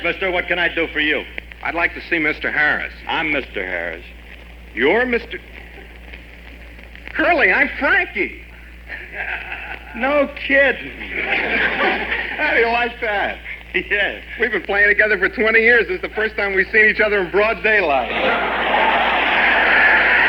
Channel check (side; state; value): both; identical; correlation 1.00